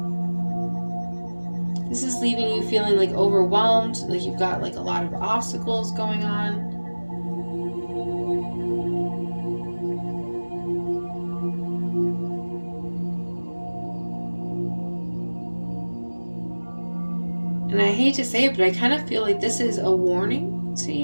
this is leaving you feeling like overwhelmed, like you've got like a lot of obstacles going on. And I hate to say it, but I kind of feel like this is a warning to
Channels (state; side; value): inverted; both; correlation -1.00